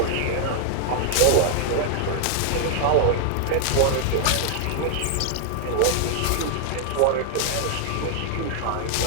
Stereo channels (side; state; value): both; different; correlation -0.01